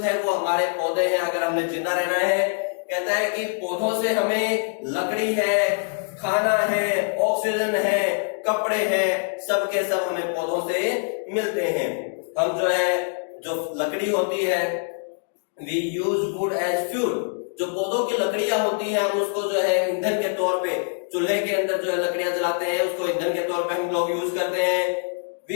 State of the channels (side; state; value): right; silent; 62 dB below the other